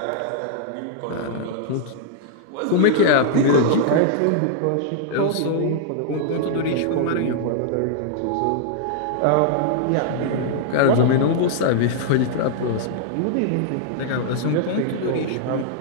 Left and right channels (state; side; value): different; both; correlation -0.01